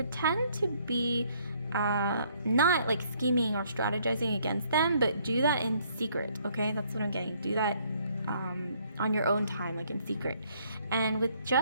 to be not like scheming or strategizing against them, but do that in secret. Okay, that's what I'm getting. Do that on your own time, like in secret. And with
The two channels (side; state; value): both; inverted; correlation -0.65